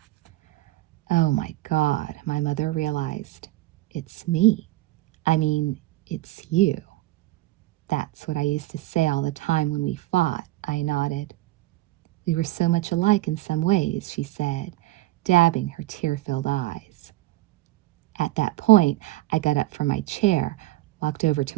Oh my God, my mother realized. It's me. I mean, it's you. That's what I used to say all the time when we fought, I nodded. We were so much alike in some ways, she said, dabbing her tear-filled eyes. At that point, I got up from my chair, walked over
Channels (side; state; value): left; quieter; 17.2 dB